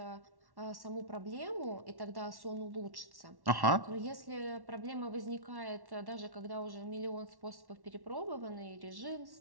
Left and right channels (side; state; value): left; late; 1.1 ms